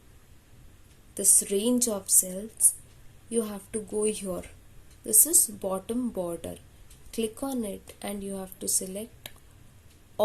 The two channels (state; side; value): identical; both; correlation 1.00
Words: this range of cells. You have to go here. This is bottom border. Click on it and you have to select